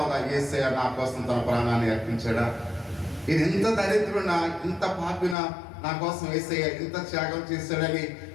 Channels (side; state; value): right; drops out; at 5.4 s